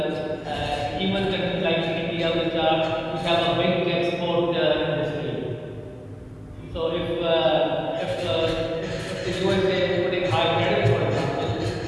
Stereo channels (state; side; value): identical; both; correlation 1.00